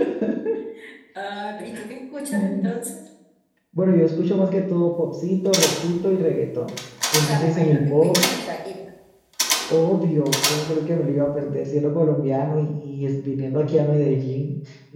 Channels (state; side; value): identical; both; correlation 1.00